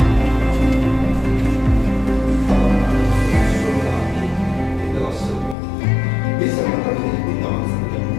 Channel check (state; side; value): drops out; right; at 5.6 s